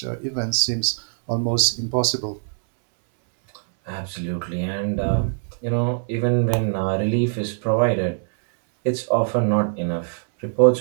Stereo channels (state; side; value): silent; left; 64 dB below the other